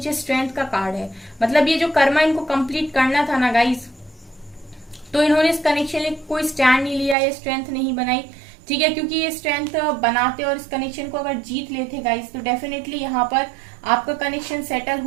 स्ट्रेंथ का कार्ड है, मतलब ये जो कर्मा इनको कंप्लीट करना था ना गाइज, तो इन्होंने इस कनेक्शन में कोई स्टैंड नहीं लिया, ये स्ट्रेंथ नहीं बनाई, ठीक है। क्योंकि ये स्ट्रेंथ बनाते और इस कनेक्शन को अगर जीत लेते गाइस तो डेफिनेटली यहाँ पर आपका कनेक्शन सेटल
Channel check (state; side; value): drops out; left; at 7.2 s